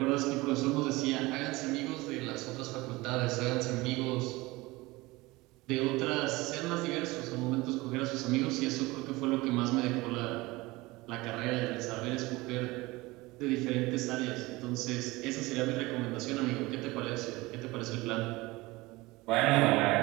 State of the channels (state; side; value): quieter; left; 21.4 dB